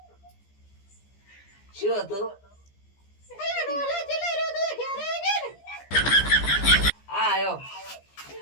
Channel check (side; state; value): right; late; 15 ms